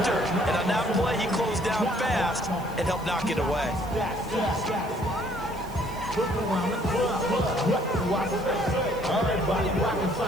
And on that play, he closed down fast and helped knock it away.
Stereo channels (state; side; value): noise; right; hiss, 21 dB below the sound